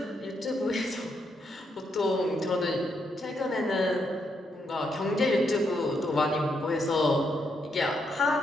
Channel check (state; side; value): normal; both; correlation 0.78